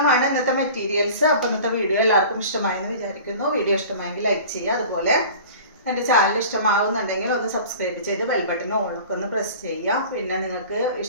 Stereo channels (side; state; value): both; inverted; correlation -0.41